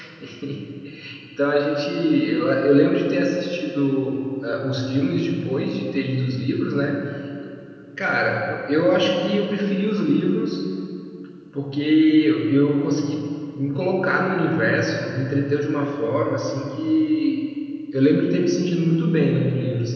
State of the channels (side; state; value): both; identical; correlation 1.00